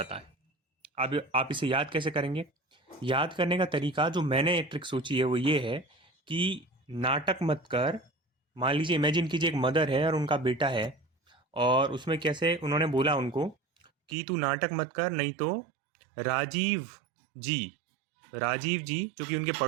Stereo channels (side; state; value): left; drops out; at 14.2 s